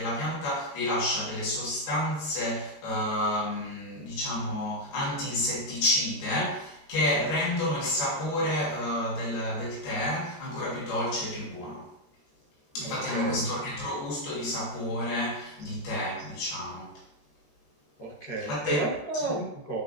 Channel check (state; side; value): late; right; 13 ms